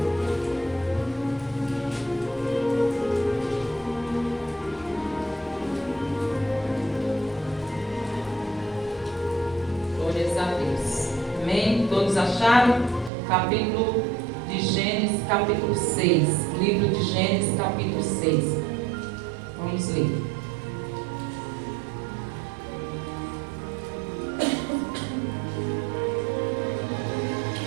Glórias a Deus. Amém? Todos acharam? Capítulo de Gênesis, capítulo 6. Livro de Gênesis, capítulo 6. Vamos ler.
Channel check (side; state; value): left; drops out; at 13.1 s